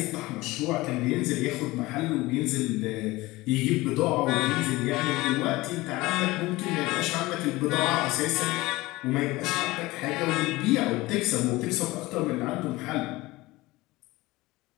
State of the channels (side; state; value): right; quieter; 20.2 dB